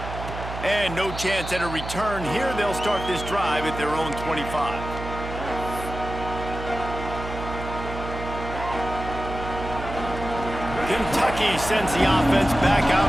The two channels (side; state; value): right; noise; hum, 8 dB below the sound